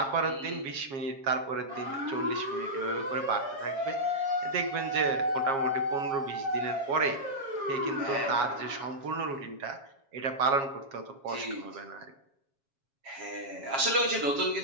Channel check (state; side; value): late; left; 7.3 ms